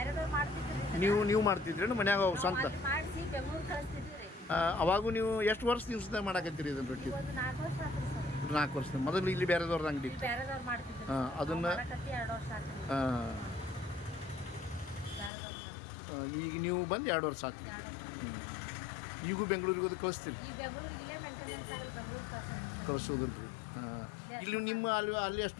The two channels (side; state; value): right; drops out; at 15.3 s